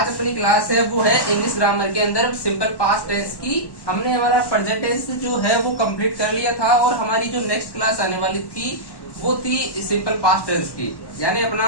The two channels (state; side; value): late; right; 1.1 ms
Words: अपनी क्लास है वो है इंग्लिश ग्रामर के अंदर सिंपल पास्ट टेंस की। हमने हमारा प्रेजेंट टेंस जो है वो कंप्लीट कर लिया था और हमारी जो नेक्स्ट क्लास आने वाली थी वो थी सिंपल पास्ट टेंस की। यानी